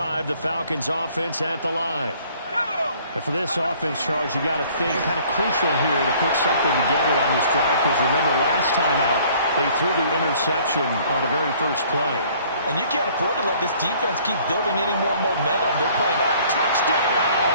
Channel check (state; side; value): inverted; both; correlation -0.57